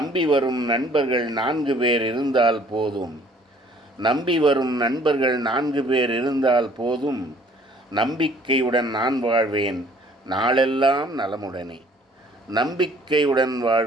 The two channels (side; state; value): both; normal; correlation 0.57